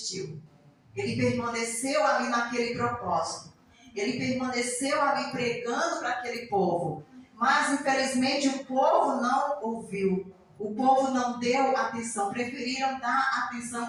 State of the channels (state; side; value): identical; both; correlation 1.00